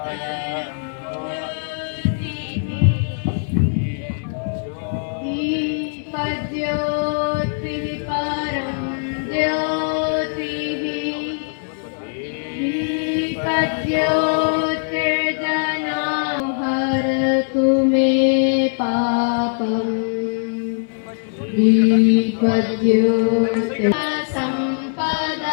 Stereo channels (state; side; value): silent; right; 62 dB below the other